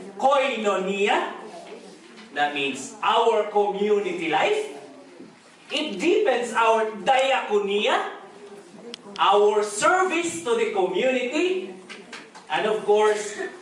koinonia, that means our community life. It deepens our diakonia, our service to the community, and of course,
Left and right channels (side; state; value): both; identical; correlation 1.00